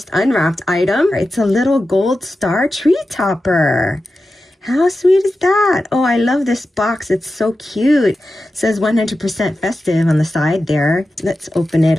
unwrapped item. It's a little gold star tree topper. How sweet is that? Oh, I love this box. It's so cute. It says 100% festive on the side there. Let's open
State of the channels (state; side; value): normal; both; correlation 0.92